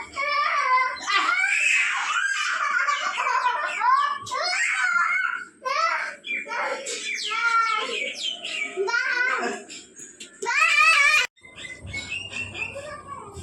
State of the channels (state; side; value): identical; both; correlation 1.00